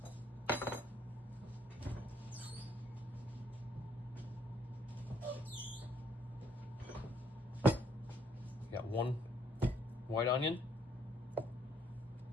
Got 1 white onion,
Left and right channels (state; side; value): normal; both; correlation 0.68